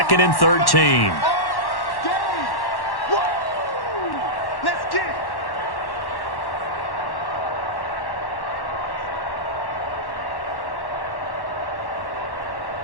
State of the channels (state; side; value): late; right; 1.1 ms